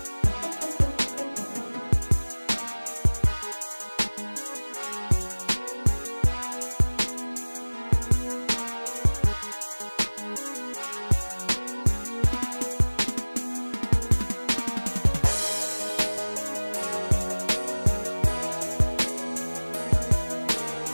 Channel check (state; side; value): inverted; both; correlation -1.00